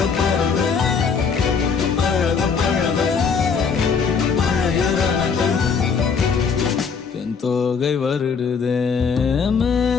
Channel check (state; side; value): quieter; right; 5.8 dB